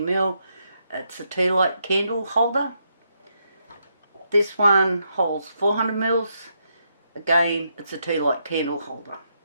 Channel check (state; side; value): inverted; both; correlation -0.79